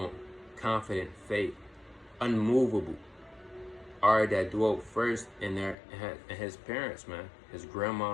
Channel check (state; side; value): drops out; right; at 5.8 s